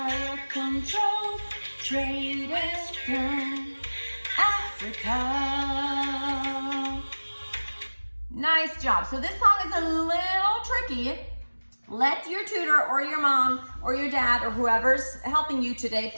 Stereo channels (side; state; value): both; inverted; correlation -1.00